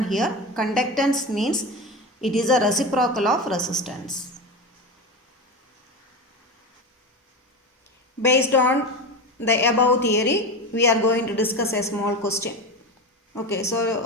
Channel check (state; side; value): normal; both; correlation 0.23